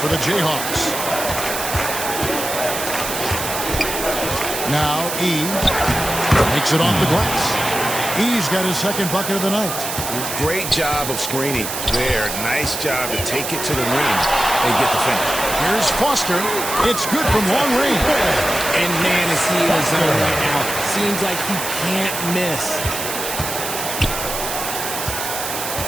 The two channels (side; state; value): right; noise; hiss, 5 dB below the sound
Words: the Jayhawks. Now E makes it off the glass. E's got his second bucket of the night. Great job of screening there. Nice job to take it to the ring and get the finish. Here's Foster. It's good from long range. And man, is he in his zone right now. Seems like he can't miss.